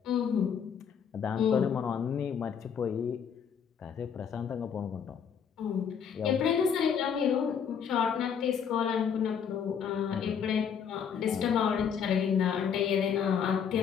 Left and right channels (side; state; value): right; quieter; 7.4 dB